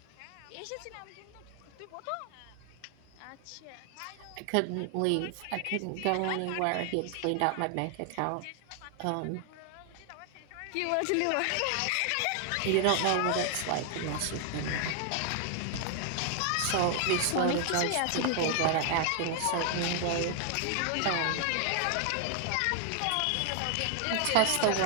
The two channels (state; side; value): different; both; correlation 0.00